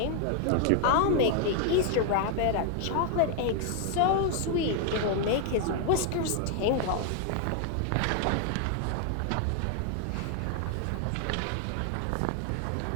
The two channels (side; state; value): both; different; correlation 0.00